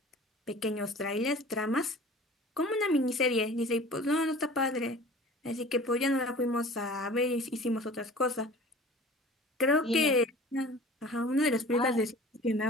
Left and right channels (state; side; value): normal; both; correlation 0.43